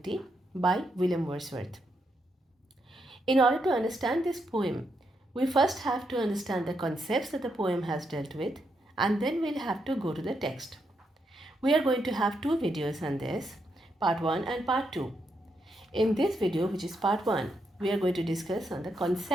by William Wordsworth. In order to understand this poem, we first have to understand the concepts that the poem has dealt with, and then we'll have to go to the text. We are going to have two videos on this, part 1 and part 2. In this video, which is part 1, we are going to discuss on the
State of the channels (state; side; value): normal; both; correlation 0.81